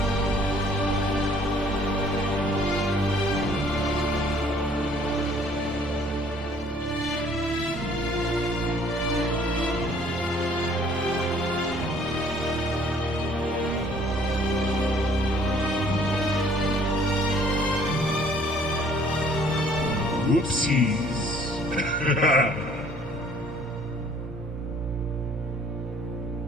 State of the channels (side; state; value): both; normal; correlation 0.58